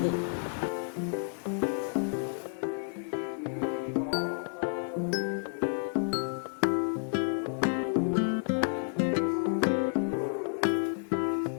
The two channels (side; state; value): right; silent; digital silence